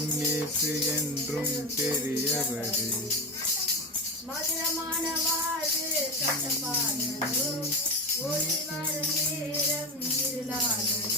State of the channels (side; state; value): both; normal; correlation 0.20